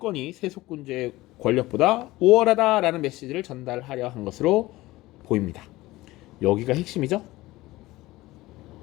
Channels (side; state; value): right; quieter; 18.6 dB